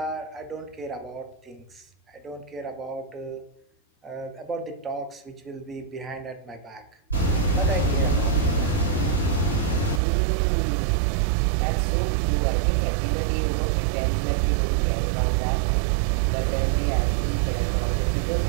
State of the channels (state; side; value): drops out; left; at 10.0 s